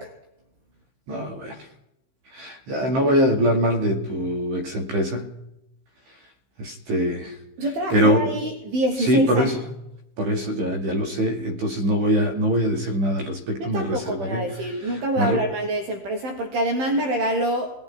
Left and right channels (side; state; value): left; late; 15 ms